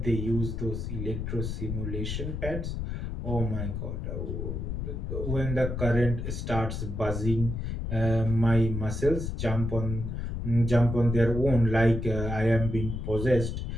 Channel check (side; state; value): left; noise; rumble, 4 dB below the sound